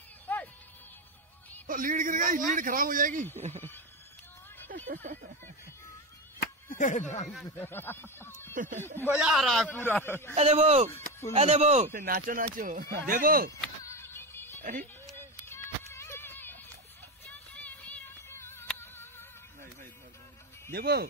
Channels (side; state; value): both; normal; correlation 0.17